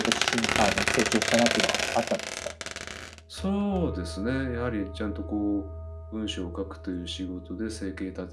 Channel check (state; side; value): identical; both; correlation 1.00